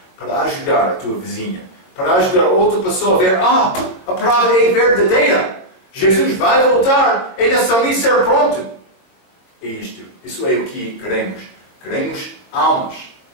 Para ajudar a tua vizinha. Para ajudar outra pessoa a ver, a palavra é verdadeira. Jesus vai voltar, é necessário ser pronto. É isto. Isso é o que queremos. Queremos almas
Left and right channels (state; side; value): late; right; 22 ms